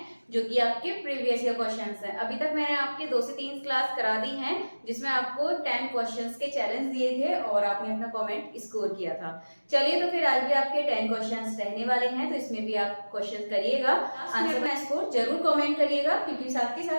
जो कि आपके प्रीवियस ईयर क्वेश्चंस हैं। अभी तक मैंने आपके 2 से 3 क्लास करा दी हैं जिसमें आपको 10 क्वेश्चंस के चैलेंज दिए थे और आपने अपना कमेंट स्कोर किया था। चलिए, तो फिर आज भी आपके 10 क्वेश्चंस रहने वाले हैं, तो इसमें भी आप क्वेश्चन करिएगा, आंसर में स्कोर जरूर कमेंट करिएगा, क्योंकि साथ के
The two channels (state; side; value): inverted; both; correlation -1.00